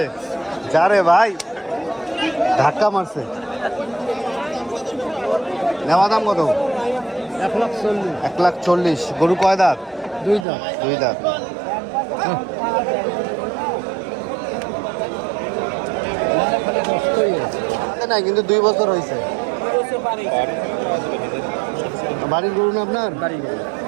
যা রে ভাই, ধাক্কা মারছে। নেওয়া দাম কত? 1,40,000। গরু কয় দাঁত? 2 দাঁত। 2 দাঁত। নাই কিন্তু 2 বছর হয়েছে। বাড়ির গরু না আপনার?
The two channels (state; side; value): drops out; left; at 10.5 s